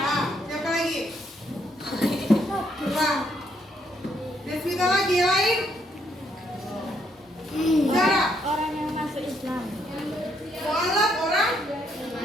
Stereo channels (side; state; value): both; normal; correlation 0.73